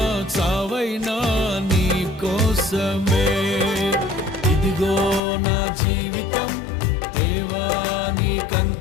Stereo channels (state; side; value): drops out; right; at 5.2 s